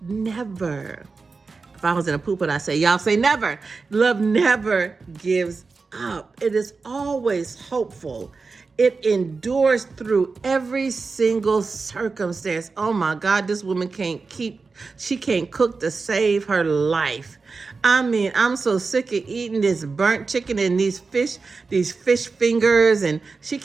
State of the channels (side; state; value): left; quieter; 4.3 dB